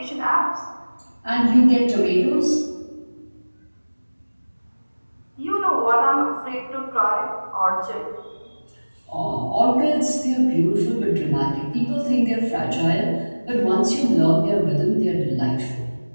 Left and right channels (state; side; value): inverted; both; correlation -1.00